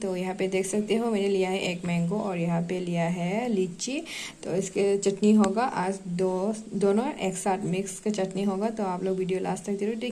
यहाँ पे देख सकते हो मैंने लिया है एक मैंगो और यहाँ पे लिया है लीची। तो इसके चटनी होगा आज दोनों एक साथ मिक्स का चटनी होगा। तो आप लोग वीडियो लास्ट तक जरूर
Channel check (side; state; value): both; identical; correlation 1.00